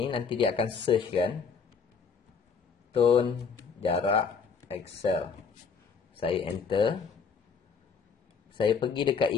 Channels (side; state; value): right; quieter; 5.7 dB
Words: nanti dia akan search kan. Tone jarak Excel. Saya enter. Saya pergi dekat